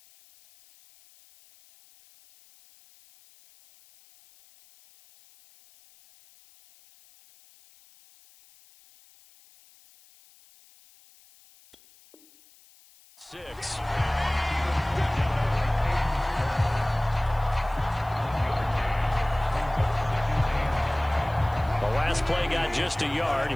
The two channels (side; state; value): left; noise; hiss, 28 dB below the sound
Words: Six. The last play got just a yard.